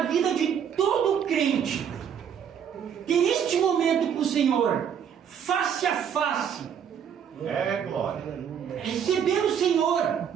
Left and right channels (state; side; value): quieter; left; 8.2 dB